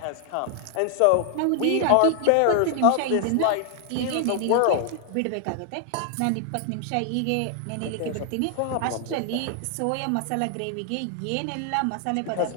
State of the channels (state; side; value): different; both; correlation 0.00